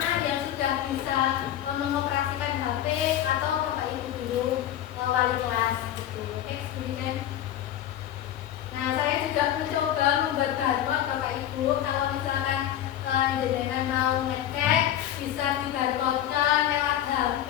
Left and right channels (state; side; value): quieter; right; 11.6 dB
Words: yang sudah bisa mengoperasikan HP atau bapak ibu guru wali kelas gitu. Kemudian, nah saya juga mencoba membuat barcode bapak ibu kalau misalkan jenengan mau ngecek bisa di barcode-nya lewat